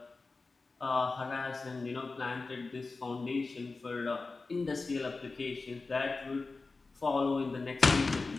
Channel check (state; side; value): quieter; right; 3.8 dB